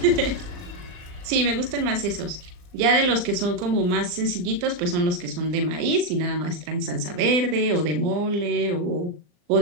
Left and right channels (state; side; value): late; left; 39 ms